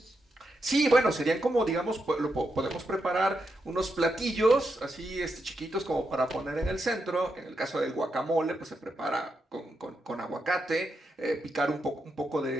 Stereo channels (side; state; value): both; normal; correlation 0.84